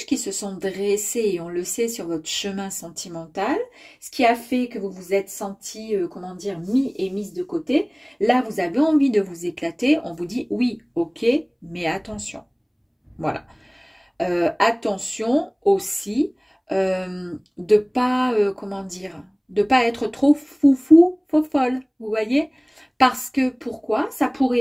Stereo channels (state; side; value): identical; both; correlation 1.00